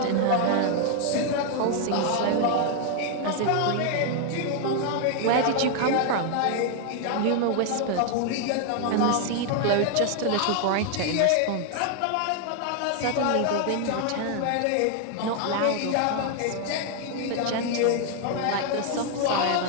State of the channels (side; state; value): both; different; correlation 0.00